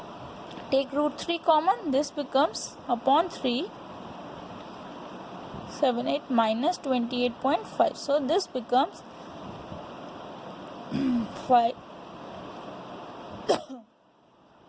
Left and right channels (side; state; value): both; identical; correlation 1.00